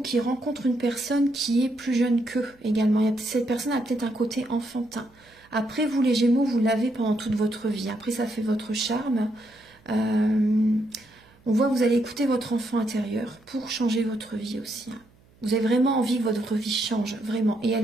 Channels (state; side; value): noise; right; hum, 30 dB below the sound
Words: qui rencontrent une personne qui est plus jeune qu'eux également. Cette personne a peut-être un côté enfantin. Après, vous les Gémeaux, vous l'avez pendant toute votre vie. Après, ça fait votre charme. On voit que vous allez écouter votre enfant intérieur pour changer votre vie aussi. Hein. Vous avez vraiment envie que votre vie change, vraiment. Et